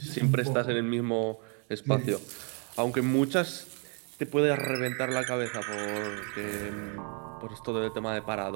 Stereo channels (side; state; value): left; quieter; 38.0 dB